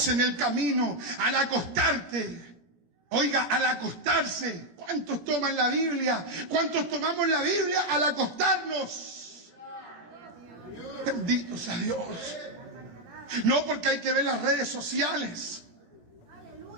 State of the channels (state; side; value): late; left; 17 ms